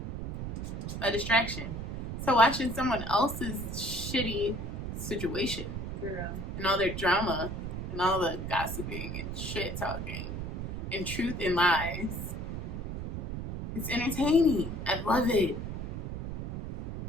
a distraction. So watching someone else's shitty situation and all their drama and all the gossiping and shit talking and truth and lies, it's entertaining. I love it.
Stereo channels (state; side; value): noise; right; rumble, 5 dB below the sound